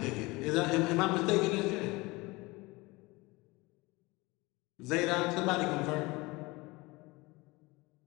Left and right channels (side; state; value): right; quieter; 23.1 dB